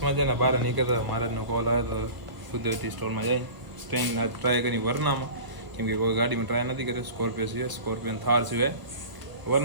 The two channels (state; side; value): late; left; 1.1 ms